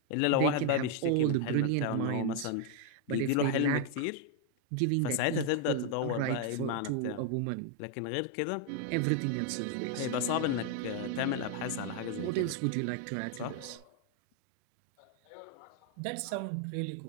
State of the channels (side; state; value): both; different; correlation 0.01